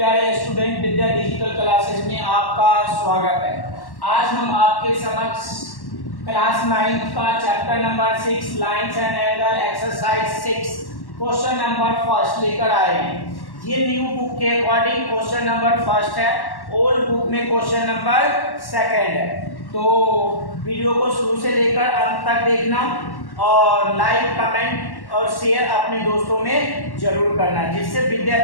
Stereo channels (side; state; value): right; late; 1.1 ms